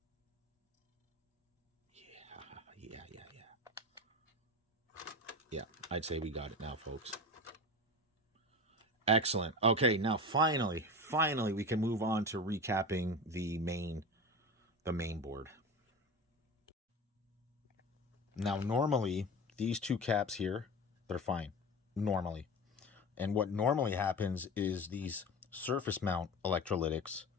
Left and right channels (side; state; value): both; normal; correlation 0.29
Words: Yeah, I'd say we got it now, folks. Excellent. Okay, now finally we can move on to recapping the main board. Now, normally, these two caps here, they're fine. Normally. And what normally happens is these surface mount electrolytics